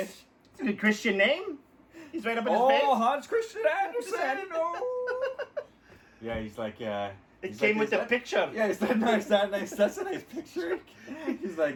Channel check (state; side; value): identical; both; correlation 1.00